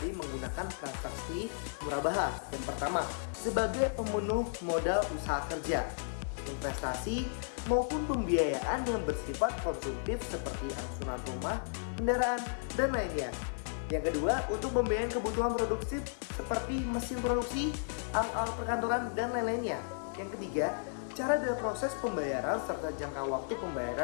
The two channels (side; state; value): right; silent; 55 dB below the other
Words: menggunakan transaksi murabaha. Yang pertama, sebagai pemenuh modal usaha kerja, investasi maupun pembiayaan yang bersifat konsumtif seperti angsuran rumah, kendaraan, dan lainnya. Yang kedua, untuk pembiayaan kebutuhan produksi seperti mesin produksi, alat-alat perkantoran, dan lain-lainnya. Yang ketiga, cara dan proses pembayaran serta jangka waktu